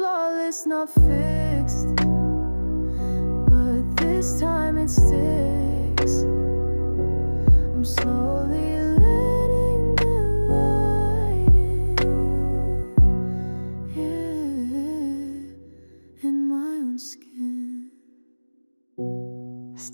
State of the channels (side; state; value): both; inverted; correlation -1.00